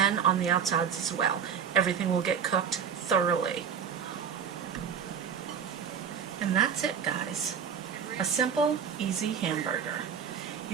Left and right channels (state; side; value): quieter; left; 7.4 dB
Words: on the outsides as well. Everything will get cooked thoroughly. And that's it, guys. A simple, easy hamburger.